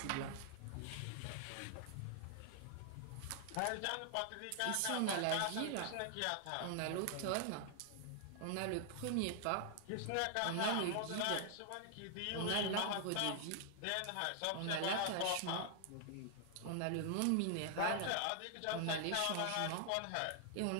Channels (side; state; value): both; different; correlation 0.00